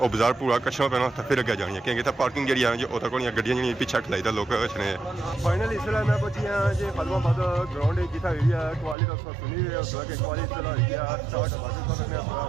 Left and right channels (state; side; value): drops out; left; at 9.0 s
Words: बाजार पूरा कच्छा पैना तो फिर अगे जानी है क्योंकि पार्किंग जी है जी वो तक गड्डियां जी पिछा खलाई था लोग कछने फाइनल इसलिए मैं पहुंची हाँ जी खादमाबाद ग्राउंड जितना हुई है कवाली तो सुनी हुई है उस कि कवाली स्टार्ट बाकी